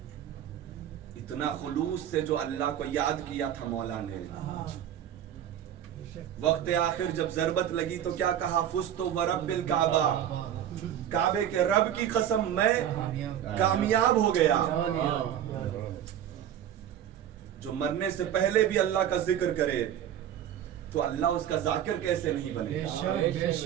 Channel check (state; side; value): quieter; left; 10.4 dB